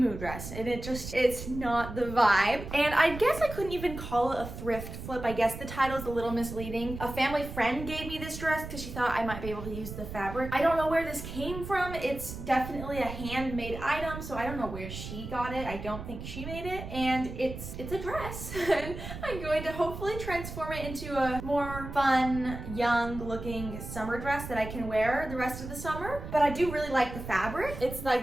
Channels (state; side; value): noise; right; rumble, 9 dB below the sound